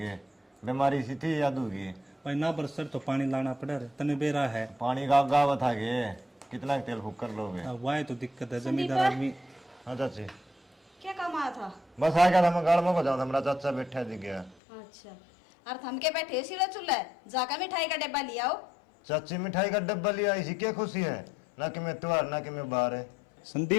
बीमारी सी थी याद होगी। भाई ना बरसर तो पानी लाना पड़ा रे, तने बेरा है। पानी का गावत आ गए, कितना तेल फूक कर लोगे। अब वाह तो दिक्कत है, जमींदार आदमी। हाँ चाची, क्या काम आया था? बस आ गया था, मैं गाड़ में को जाऊँ, हमारा चाचा बैठा दिख गया। अच्छा, और थम के बैठे सिरा चूल्हा जाकर मिठाई का डिब्बा लिया आओ। चाची मिठाई का डब्बा लिया, इसी क्या खुशी है, ना कि मैं त्योहार ना कि मैं बाहर है।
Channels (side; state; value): right; drops out; at 14.6 s